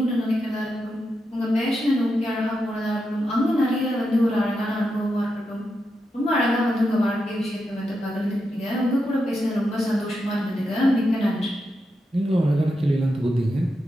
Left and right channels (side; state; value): both; normal; correlation 0.86